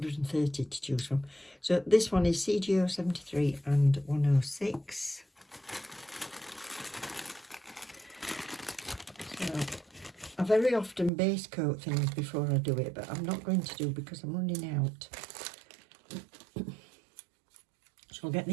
to choose from. So this one is CGO 73 and 106. So I very often base coat things before I do it, but I'm not going to do because I'm running out. So I'll get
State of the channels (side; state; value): left; drops out; at 11.1 s